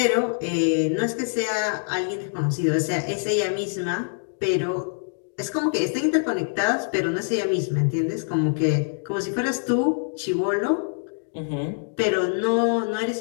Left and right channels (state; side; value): silent; right; digital silence